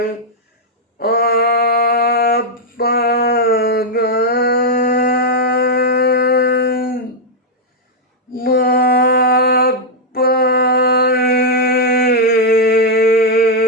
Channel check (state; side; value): normal; both; correlation -0.03